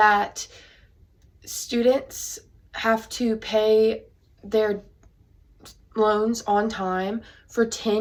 students have to pay their loans on time for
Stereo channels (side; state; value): both; identical; correlation 1.00